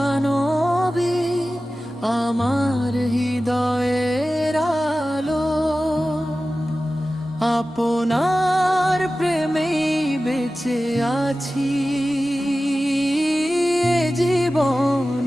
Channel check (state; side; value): normal; both; correlation 0.95